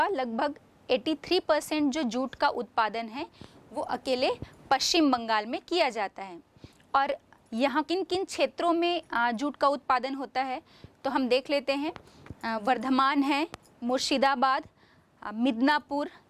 लगभग 83% जो जूट का उत्पादन है वो अकेले पश्चिम बंगाल में किया जाता है। और यहाँ किन किन क्षेत्रों में जूट का उत्पादन होता है तो हम देख लेते हैं। वर्धमान है, मुर्शिदाबाद, मिदनापुर,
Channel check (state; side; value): identical; both; correlation 1.00